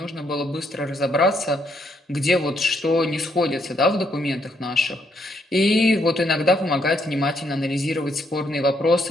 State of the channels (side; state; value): both; normal; correlation 0.73